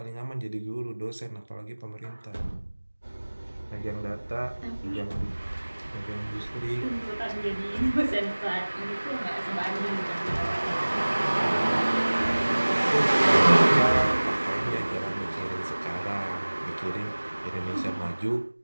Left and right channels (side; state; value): both; inverted; correlation -1.00